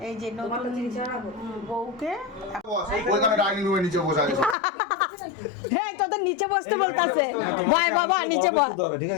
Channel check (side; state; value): right; drops out; at 4.5 s